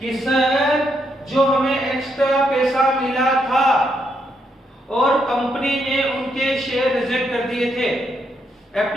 सर जो हमें एक्स्ट्रा पैसा मिला था और कंपनी ने उनके शेयर रिजेक्ट कर दिए थे,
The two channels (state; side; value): normal; both; correlation 0.77